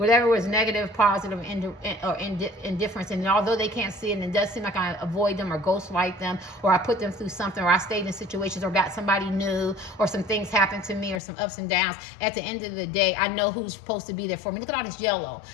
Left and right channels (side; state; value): right; drops out; at 11.2 s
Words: was negative, positive, or indifference, and although they can't see it, and it does seem like I avoid them or ghostlight them, or I put them through something, or I stayed in situations or got somebody new, or some things happened to me, or some ups and downs, at the end of the day, I know who's supposed to be there for me. Look at all this yellow.